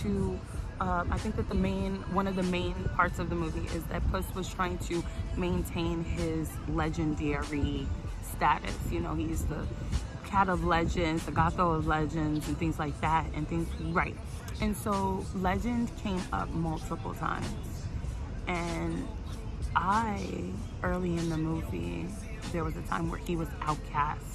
I think that one of the main parts of the movie is that Puss was trying to maintain his legendary status. He's the cat of legends, the Gatho of legends, and things like that, right. And so legend came up multiple times. And early in the movie, there was a time where he was outcast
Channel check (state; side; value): identical; both; correlation 1.00